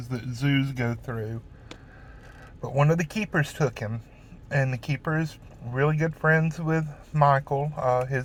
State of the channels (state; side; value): identical; both; correlation 1.00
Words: that zoos go through. But one of the keepers took him, and the keeper is really good friends with Michael.